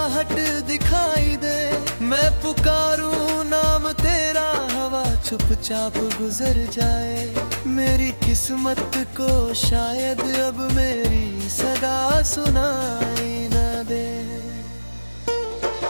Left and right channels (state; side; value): inverted; both; correlation -1.00